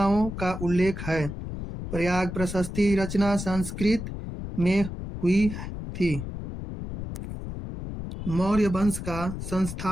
का उल्लेख है। प्रयाग प्रशस्ति रचना संस्कृत में हुई थी। मौर्य वंश का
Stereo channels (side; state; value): left; noise; rumble, 7 dB below the sound